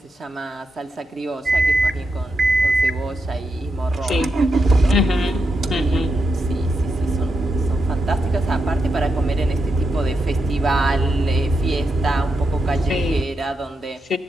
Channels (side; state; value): both; normal; correlation 0.85